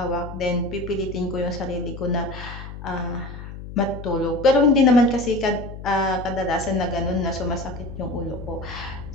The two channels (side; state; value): left; noise; hum, 11 dB below the sound